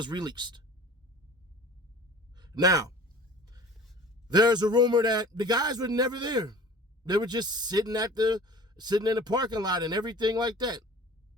released. Now, there's a rumor that the guys were never there. They were just sitting in the parking lot and everything like that.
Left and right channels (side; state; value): both; normal; correlation 0.44